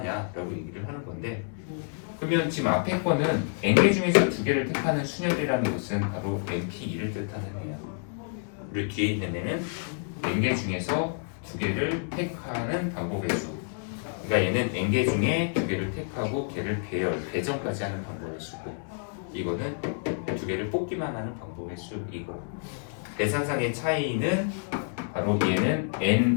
얘기를 하는 건데, 그러면 지금 앞에 거는 n개 중에서 두 개를 택하는 순혈이라는 것은 바로 np2를 뜻하는 애야. 우리 뒤에 있는 애는 n개 중에서 두 개를 택하는 방법의 수. 그러니까 얘는 n개 중에 두 개를 택하고 걔를 배정까지 하는 방법의 수고, 이거는 두 개를 뽑기만 하는 방법의 수이고, 계산상의 차이는 바로 얘는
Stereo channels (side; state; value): right; silent; 59 dB below the other